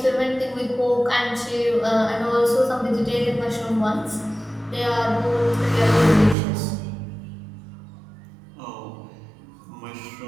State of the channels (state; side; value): drops out; left; at 6.4 s